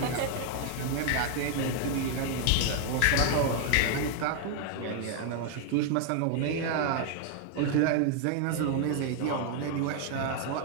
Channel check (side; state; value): both; different; correlation 0.00